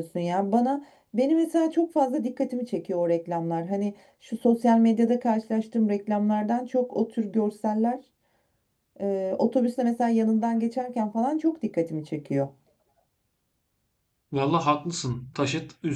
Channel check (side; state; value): both; identical; correlation 1.00